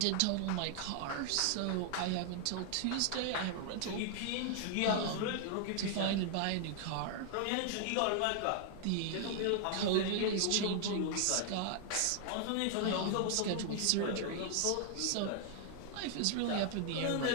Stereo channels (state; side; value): different; both; correlation 0.00